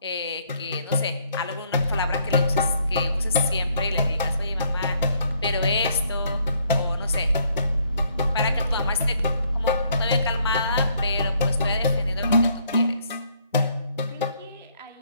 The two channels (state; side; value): inverted; both; correlation -0.68